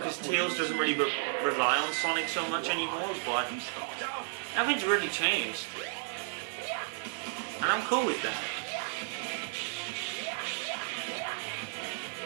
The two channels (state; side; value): silent; left; 56 dB below the other